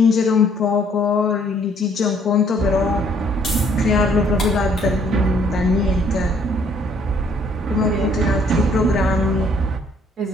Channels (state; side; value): normal; both; correlation 0.63